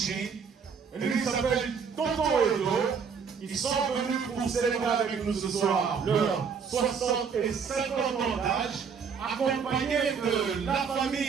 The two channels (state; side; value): quieter; left; 6.2 dB